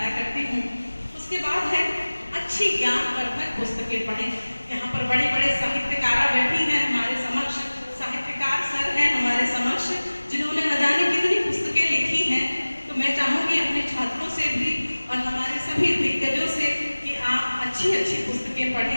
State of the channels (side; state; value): both; inverted; correlation -1.00